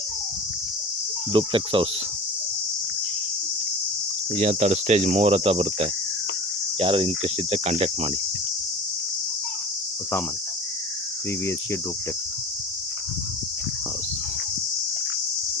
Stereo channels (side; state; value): both; normal; correlation 0.37